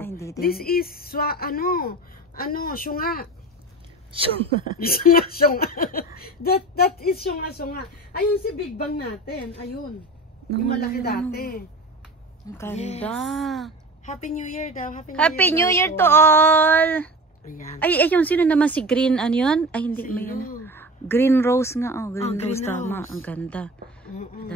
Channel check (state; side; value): normal; both; correlation 0.33